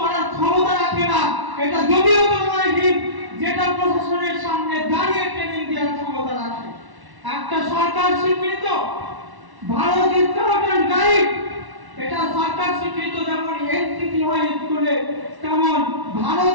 করার ক্ষমতা রাখে না। এটা জমিয়তে উলামায়ে হিন্দ, যেটা প্রশাসনের সামনে দাঁড়িয়ে ট্রেনিং দেওয়ার ক্ষমতা রাখে। একটা সরকার স্বীকৃত ভারত স্কাউট অ্যান্ড গাইড, এটা সরকার স্বীকৃত। যেমন এনসিসি হয় স্কুলে, তেমন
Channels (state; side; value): late; left; 1.1 ms